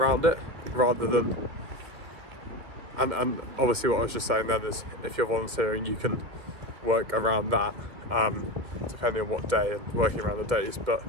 it, rather than, and obviously what I was just saying then is, if you're volunteering you can work around that, depending on what day and working around the days, but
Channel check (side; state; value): left; late; 2.4 ms